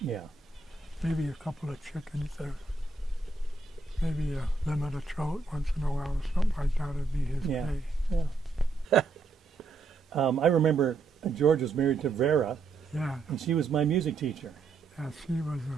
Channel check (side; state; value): left; quieter; 3.9 dB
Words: Yeah. Maybe a couple of chickens or maybe a limit of trout once in a while or something like that would be his Yeah. pay. Yeah. I remember George was married to Vera, Yeah, and she was my music teacher. yeah, she was a